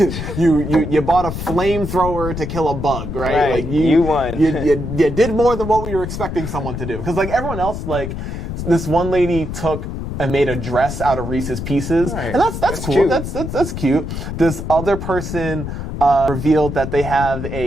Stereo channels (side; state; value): left; noise; rumble, 6 dB below the sound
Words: you bought a flamethrower to kill a bug, right? Like you won. you did more than what we were expecting someone to do. Because like everyone else, like this one lady took and made a dress out of Reese's Pieces. And that's cool. Cute. That's cute. This other person revealed that they have